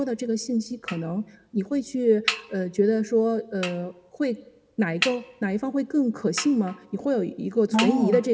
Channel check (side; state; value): both; identical; correlation 1.00